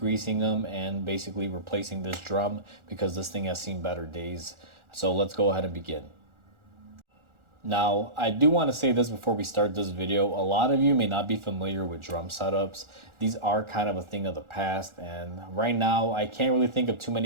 them, and basically replacing this drum because this thing has seen better days. So let's go ahead and begin. Now, I do want to say this before we start this video. A lot of you may not be familiar with drum setups. These are kind of a thing of the past, and right now I can't really think of too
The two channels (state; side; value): late; left; 1.4 ms